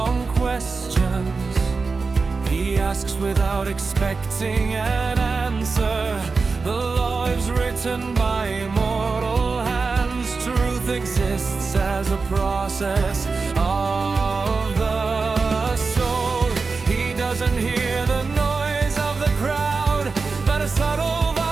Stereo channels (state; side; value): quieter; left; 4.4 dB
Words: questions, he asks without expecting an answer. The law is written by immortal hands. Truth exists as a process of the